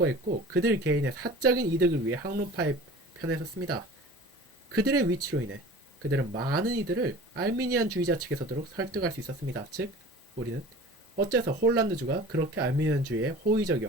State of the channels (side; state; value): both; normal; correlation 0.41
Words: 그들 개인의 사적인 이득을 위해 학론파의 편에 섰습니다. 그들의 위치로 인해 그들은 많은 이들을 알미니안주의자 측에 서도록 설득할 수 있었습니다. 즉, 우리는 어째서 홀란드주가 그렇게 알미니안주의에